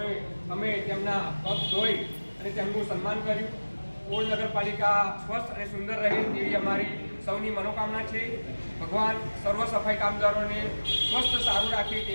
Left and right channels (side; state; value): both; inverted; correlation -1.00